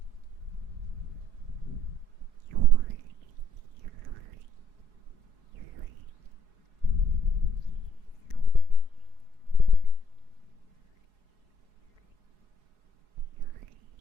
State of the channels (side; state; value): left; late; 4.8 ms